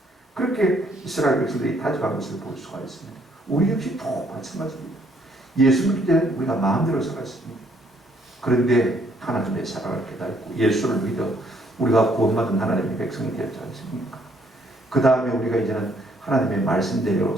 그렇게 이스라엘 백성들이 다짐한 것을 볼 수가 있습니다. 우리 역시 또 마찬가지입니다. 예수 믿기 때문에 우리가 마음대로 살았습니다. 그런데 하나님의 사랑을 깨닫고 예수를 믿어 우리가 구원받은 하나님의 백성이 되었지 않습니까? 그 다음에 우리가 이제는 하나님의 말씀대로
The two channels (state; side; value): normal; both; correlation 0.67